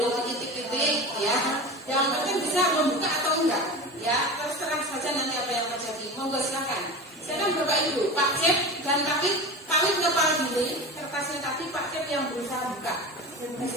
diitik-itik ya. Yang penting bisa membuka atau enggak ya, terserah saja nanti apa yang terjadi. Monggo silakan. Silakan Bapak Ibu, Pak Cep dan Kawit kepal gini, kertasnya tadi Pak Cep yang berusaha buka.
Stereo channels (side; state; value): both; normal; correlation 0.30